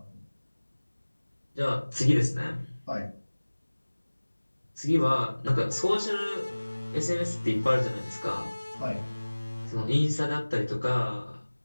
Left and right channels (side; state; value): both; inverted; correlation -1.00